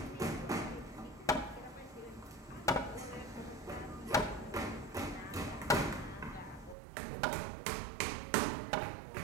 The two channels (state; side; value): drops out; left; at 6.8 s